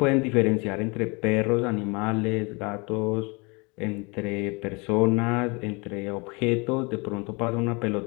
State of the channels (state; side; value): quieter; right; 28.9 dB